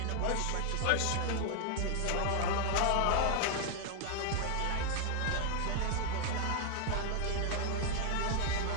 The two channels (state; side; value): different; both; correlation 0.00